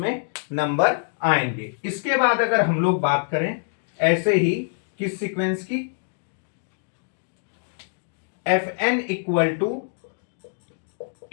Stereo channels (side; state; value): right; silent; digital silence